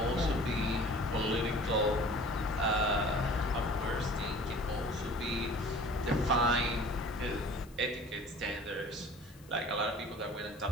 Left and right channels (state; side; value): noise; left; hiss, 26 dB below the sound